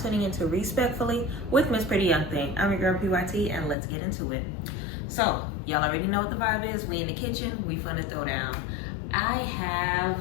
tuning into Respectfully with Miss Pretty Young Thing. I'm your girl PYT, and let's get into it. So, y'all already know what the vibe is. We in the kitchen, we finna throw down. I have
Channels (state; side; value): drops out; right; at 3.8 s